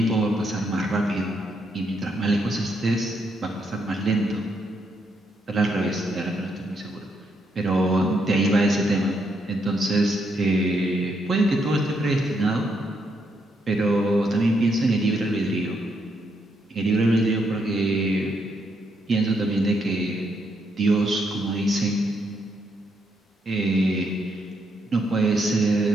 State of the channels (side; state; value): both; normal; correlation 0.77